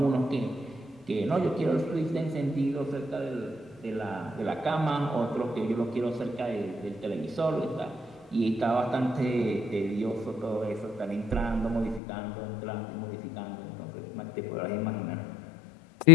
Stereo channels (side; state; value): right; drops out; at 12.0 s